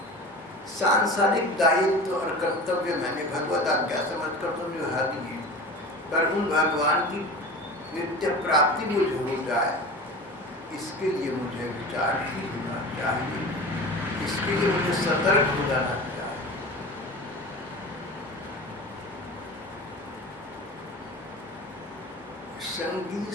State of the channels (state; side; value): normal; both; correlation 0.34